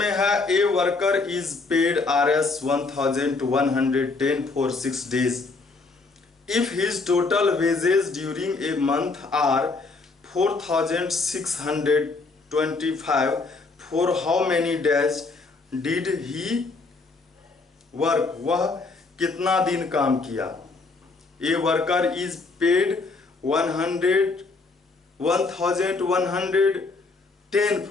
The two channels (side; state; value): right; quieter; 3.9 dB